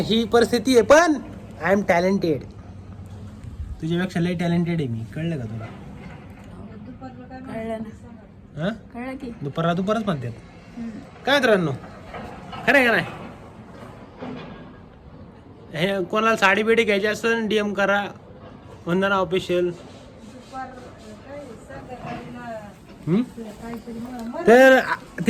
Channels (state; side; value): identical; both; correlation 1.00